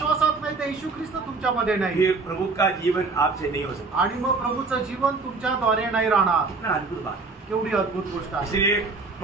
नाही तर येशू ख्रिस्त तुमच्यामध्ये नाही. ये प्रभु का जीवन आपसे नहीं हो सकता। आणि मग प्रभूचं जीवन तुमच्याद्वारे नाही राहणार. कितना अद्भुत बात, केवढी अद्भुत गोष्ट आहे. इसलिए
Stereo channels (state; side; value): quieter; left; 4.1 dB